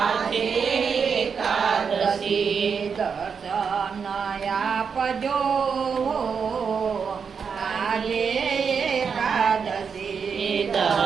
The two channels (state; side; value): quieter; left; 6.2 dB